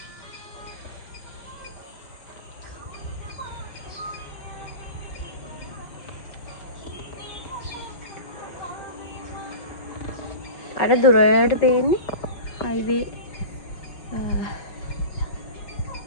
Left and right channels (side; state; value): right; late; 5.4 ms